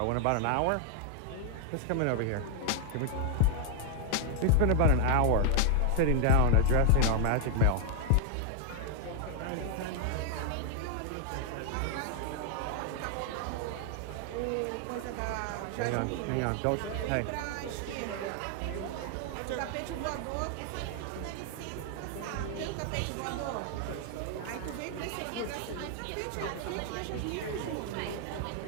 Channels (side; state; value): both; different; correlation 0.00